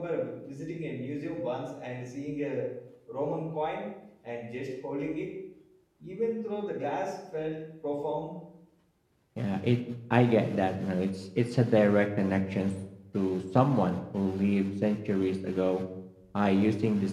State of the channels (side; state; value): both; identical; correlation 1.00